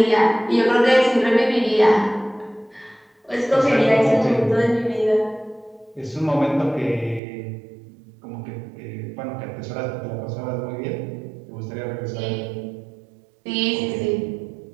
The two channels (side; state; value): left; drops out; at 7.2 s